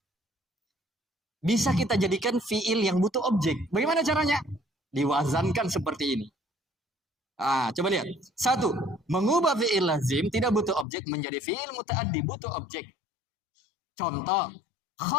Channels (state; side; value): drops out; right; at 10.9 s